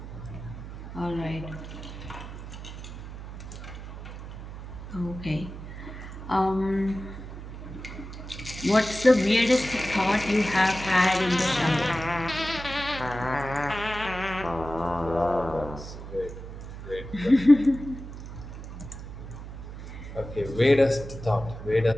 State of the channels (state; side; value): noise; right; hum, 11 dB below the sound